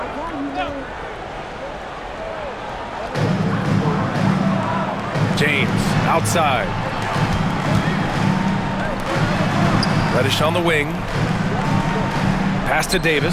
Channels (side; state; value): both; identical; correlation 1.00